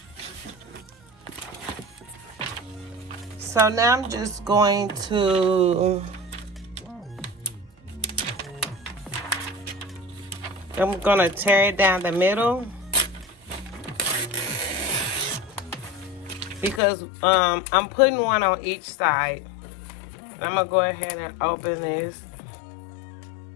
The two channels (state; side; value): drops out; right; at 16.8 s